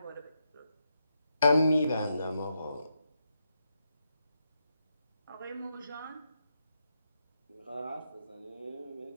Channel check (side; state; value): both; inverted; correlation -0.83